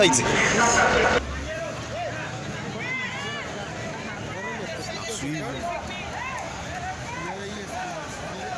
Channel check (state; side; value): identical; both; correlation 1.00